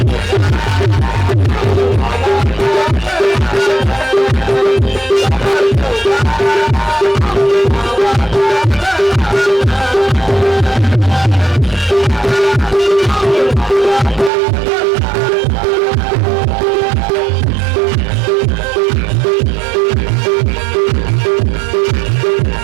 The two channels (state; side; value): drops out; left; at 14.3 s